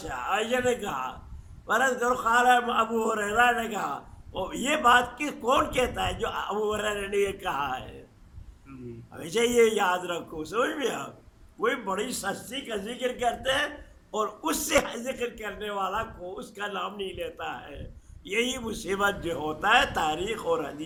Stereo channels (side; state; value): both; identical; correlation 1.00